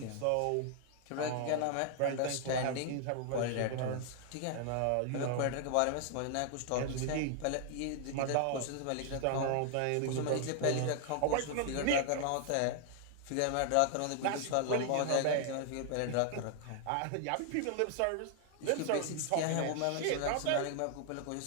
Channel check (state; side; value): different; both; correlation 0.00